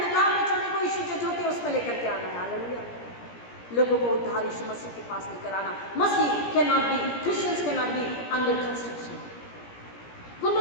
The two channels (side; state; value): right; late; 17 ms